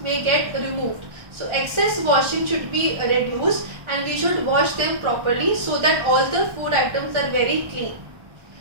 may get removed. So excess washing should be reduced and we should wash them properly so that all the food items are very clean.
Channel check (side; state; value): left; late; 1.4 ms